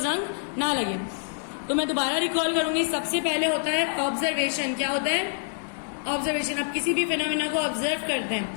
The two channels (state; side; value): silent; right; digital silence